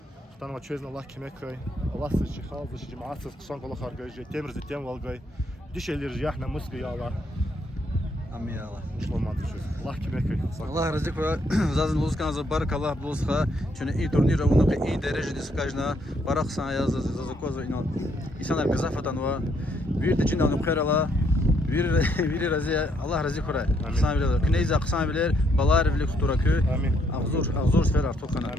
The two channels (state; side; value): normal; both; correlation 0.72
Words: Хтанова честно Аллах кимехай. Аллах сочихал, зачиматься, ксон колох аргай, тем тем волгай. Дишелер жях на мысли я Аллах. Amin ya Allah. Шломат чуз. Аллах кимехай. Allah razı olsun. Zazın luzkan za barak Allah bulsa. Çünkü iyi turnir onu ki iyi derecede sıkajna. Barak sana yaz za koza inan. İnsanlar mezafatan var. Bir de cinnanım khair Allah. Bir razı Allah razı kura. Sana bilir. Kneyza kısan bilir. Balar bilir kuturakü. Amin. Ağzur sfer artık kana.